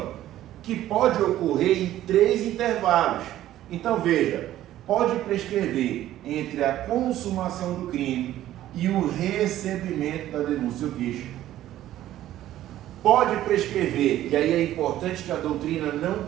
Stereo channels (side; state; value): left; quieter; 13.4 dB